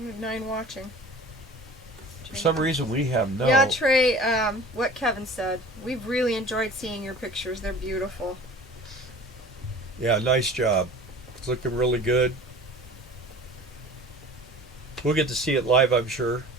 have 9 watching. For some reason we have no. Yeah, Trey, what Kevin said. We've really enjoyed seeing your pictures. They're beautiful. Yeah, nice job. It's looking really good. We'll get to see it live, I'm sure.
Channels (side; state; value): both; normal; correlation 0.43